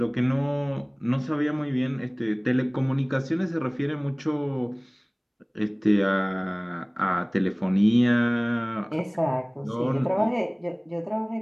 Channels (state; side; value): identical; both; correlation 1.00